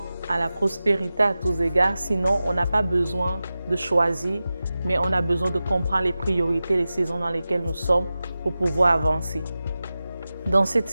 à la prospérité à tous égards. Sinon, on n'a pas besoin de choisir, mais on a besoin de comprendre les priorités, les saisons dans lesquelles nous sommes pour pouvoir avancer. Dans cette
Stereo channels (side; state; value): both; inverted; correlation -0.95